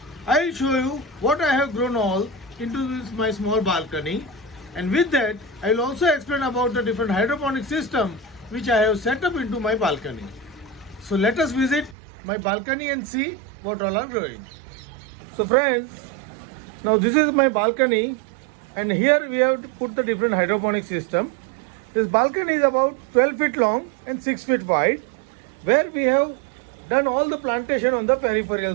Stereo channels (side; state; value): left; drops out; at 12.0 s